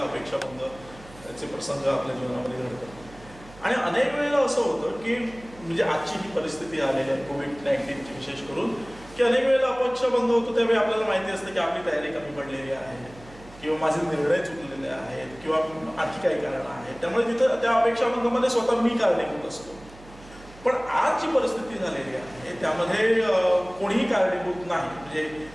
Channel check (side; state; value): right; noise; hum, 20 dB below the sound